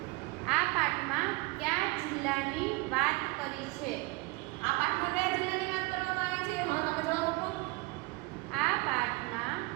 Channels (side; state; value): left; quieter; 24.9 dB